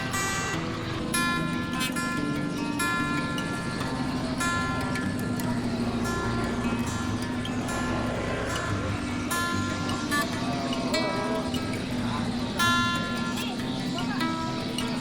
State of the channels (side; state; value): both; identical; correlation 1.00